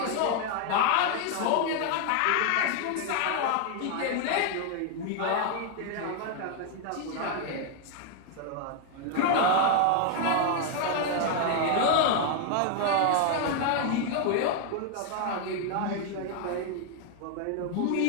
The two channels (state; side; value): different; both; correlation 0.00